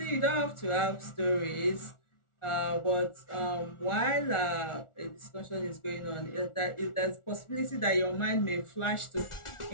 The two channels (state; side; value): late; right; 1.4 ms